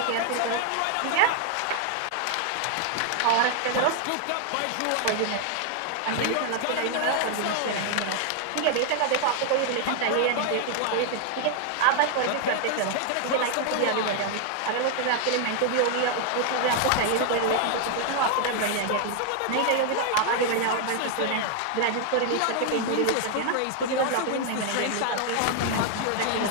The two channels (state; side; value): different; both; correlation 0.00